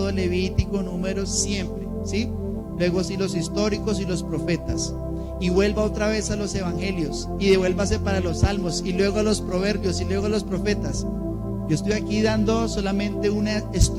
Levítico, Números, siempre, ¿sí? Luego sí los históricos y los profetas. Y vuelva otra vez a los evangelios, y devuélvase para los salmos, y luego a los proverbios, y luego a los profetas. Yo estoy aquí dando solamente una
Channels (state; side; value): identical; both; correlation 1.00